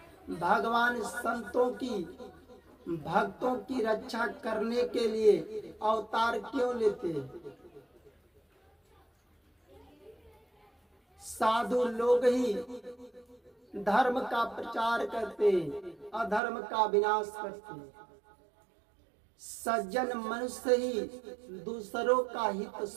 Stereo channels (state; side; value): drops out; left; at 16.4 s